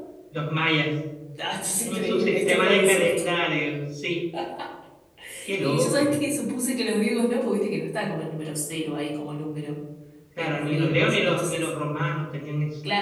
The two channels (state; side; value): identical; both; correlation 1.00